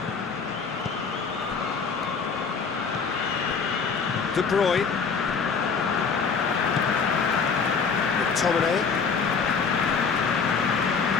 De Bruyne. McTominay.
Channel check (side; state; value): right; quieter; 5.5 dB